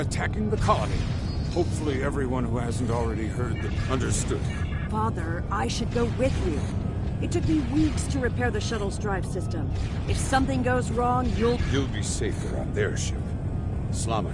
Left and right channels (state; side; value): identical; both; correlation 1.00